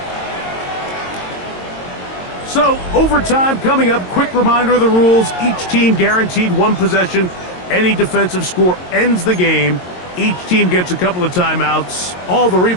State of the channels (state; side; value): late; right; 22 ms